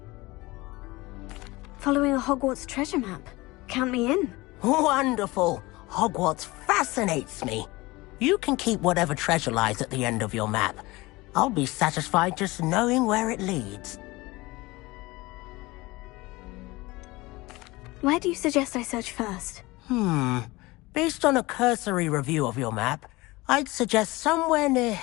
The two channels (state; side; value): quieter; right; 21.5 dB